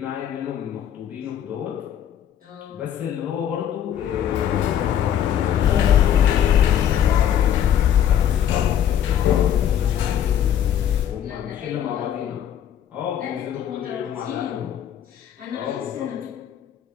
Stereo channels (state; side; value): quieter; right; 9.9 dB